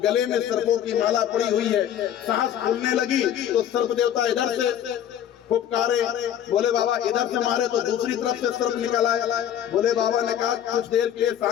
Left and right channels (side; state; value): right; quieter; 10.2 dB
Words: गले में सर्पों की माला पड़ी हुई है, सांस फूलने लगी तो सर्प देवता इधर से फुफकारे, भोले बाबा इधर से मारे तो दूसरी तरफ से सर्प निकल आया। भोले बाबा ने कहा कुछ देर के लिए